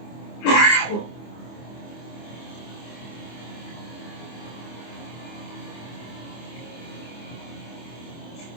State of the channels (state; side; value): late; right; 25 ms